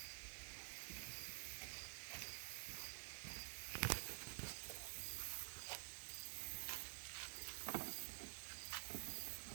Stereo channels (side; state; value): left; silent; digital silence